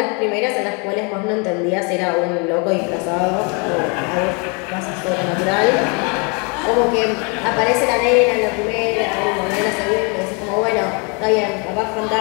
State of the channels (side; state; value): right; quieter; 33.2 dB